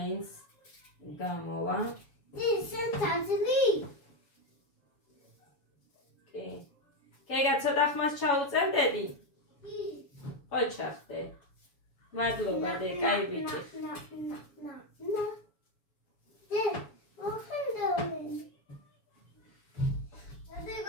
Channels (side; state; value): right; late; 7.1 ms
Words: გამოვა ისენ თაზლი კი გეგა ცოტა ხმას ჩაუწერდები? ხო ჩახდე. მადლობა დე, კაი ბიჭი.